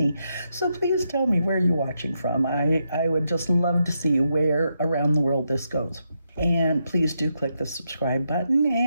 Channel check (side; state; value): both; inverted; correlation -0.82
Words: So please tell me where you're watching from. I would just love to see where around the world this goes. And please do click the subscribe button,